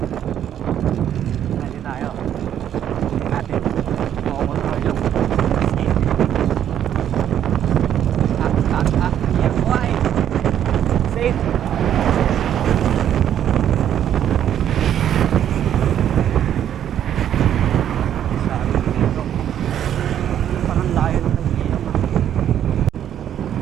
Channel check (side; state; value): left; quieter; 10.4 dB